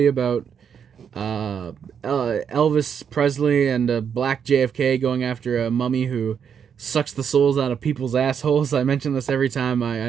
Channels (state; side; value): quieter; left; 7.5 dB